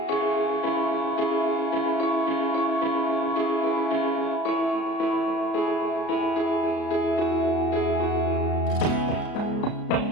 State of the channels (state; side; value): late; right; 33 ms